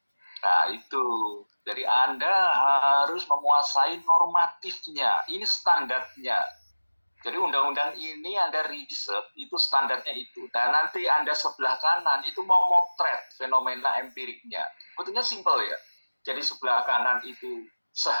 Jadi Anda harus menguasai normatifnya. Ini standarnya. Jadi undang-undang ini Anda riset, itu standarnya itu. Nah nanti Anda sebelah kanan itu mau motret fenomena empiriknya. Betulnya simpel ya. Jadi sebelah kanan itu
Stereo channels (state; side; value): inverted; both; correlation -1.00